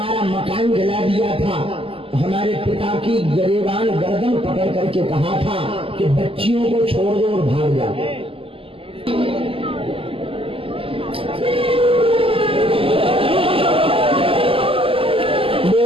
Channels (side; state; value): left; late; 0.26 ms